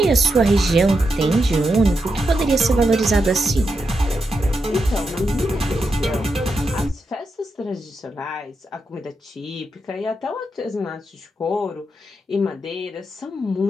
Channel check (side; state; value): both; normal; correlation 0.85